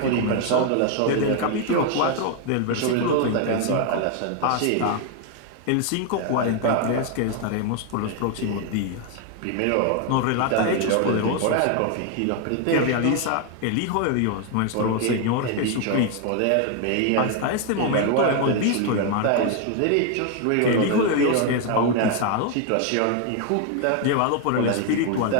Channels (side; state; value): both; different; correlation 0.01